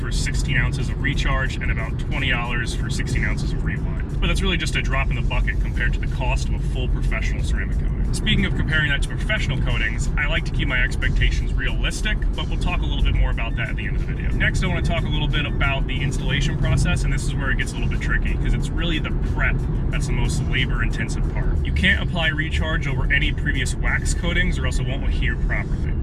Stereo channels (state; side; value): identical; both; correlation 1.00